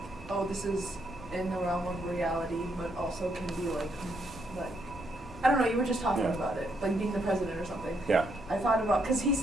oh, this is in the realm of reality, but also can be like I don't know. You were just talking about it, like being the president or something. Yeah. I thought about because he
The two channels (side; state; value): both; normal; correlation 0.75